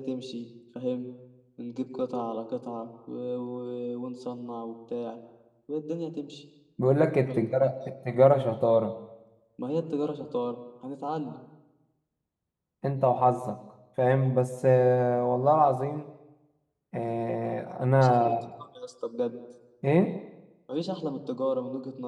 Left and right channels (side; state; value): both; identical; correlation 1.00